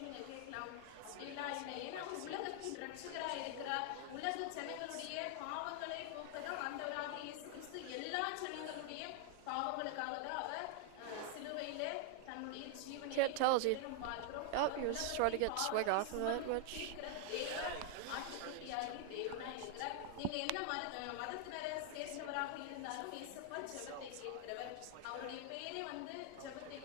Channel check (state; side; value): different; both; correlation 0.00